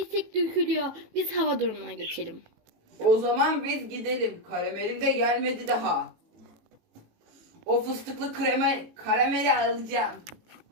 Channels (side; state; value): left; late; 18 ms